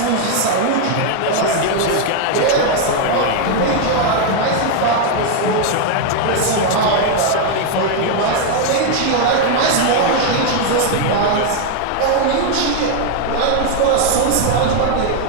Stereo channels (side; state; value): both; different; correlation 0.01